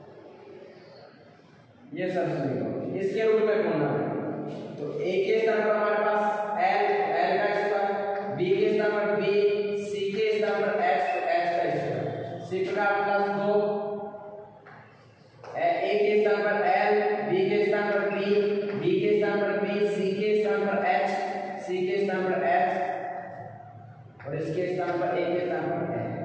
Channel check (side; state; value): both; identical; correlation 1.00